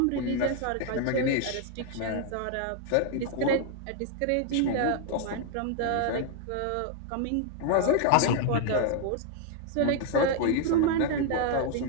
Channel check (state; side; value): different; both; correlation 0.00